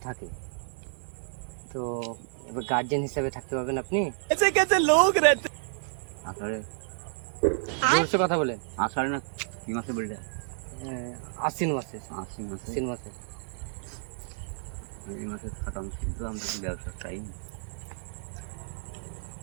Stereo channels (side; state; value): left; silent; digital silence